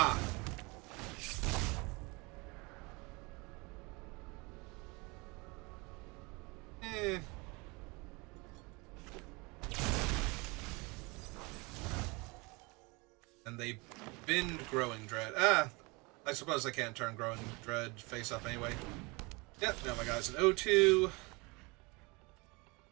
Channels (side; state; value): left; quieter; 26.9 dB